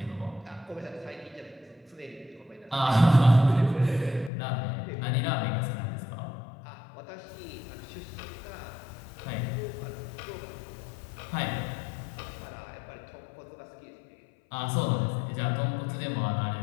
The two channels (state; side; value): drops out; right; at 4.3 s